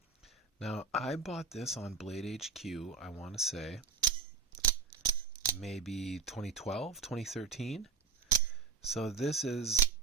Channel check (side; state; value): left; quieter; 5.1 dB